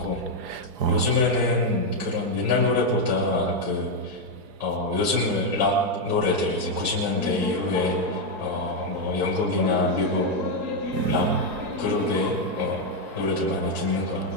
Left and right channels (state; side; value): late; left; 4.6 ms